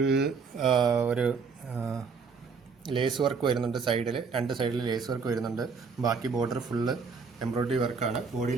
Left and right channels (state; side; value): quieter; left; 5.2 dB